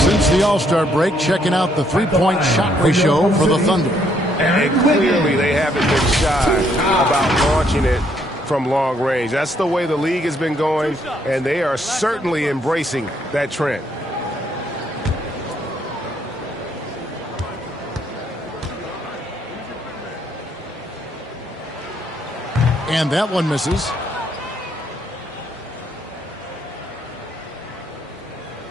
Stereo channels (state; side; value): normal; both; correlation 0.70